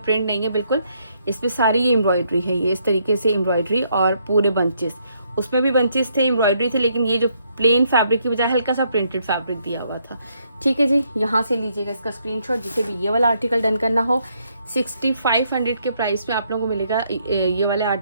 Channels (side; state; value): both; inverted; correlation -0.73